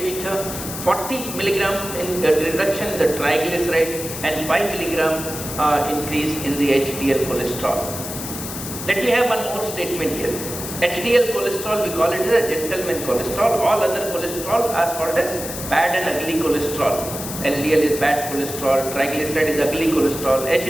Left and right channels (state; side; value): noise; left; hiss, 8 dB below the sound